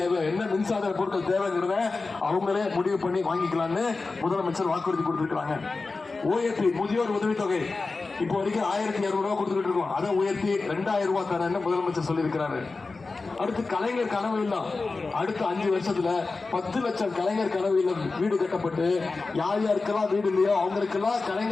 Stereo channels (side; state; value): right; quieter; 3.8 dB